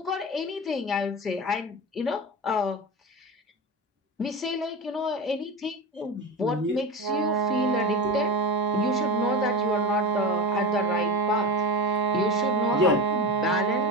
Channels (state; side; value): normal; both; correlation 0.23